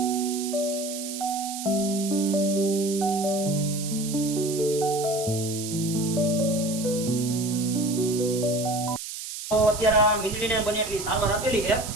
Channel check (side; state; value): right; noise; hiss, 8 dB below the sound